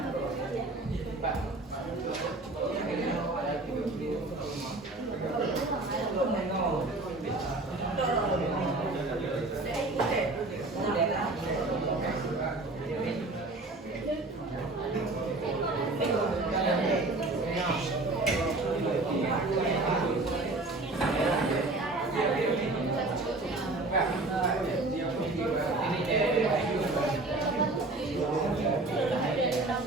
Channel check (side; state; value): left; quieter; 3.0 dB